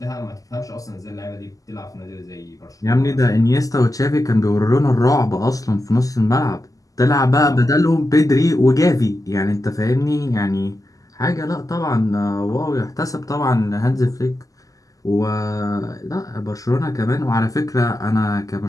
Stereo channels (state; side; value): late; right; 0.17 ms